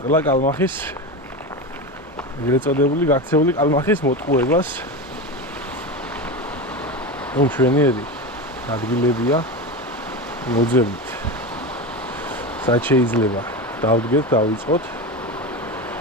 კალმახის ეგრეთ წოდებული გაქცეული კალმახის მოტყუებას. ჩვენიერი ადგილებია მოძებნით. სად შეიძლება დავდგეთ, დავიწყოთ.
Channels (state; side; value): normal; both; correlation 0.22